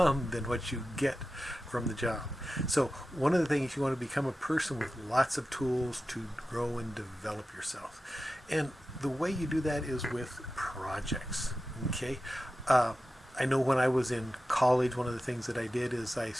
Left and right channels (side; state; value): both; normal; correlation 0.93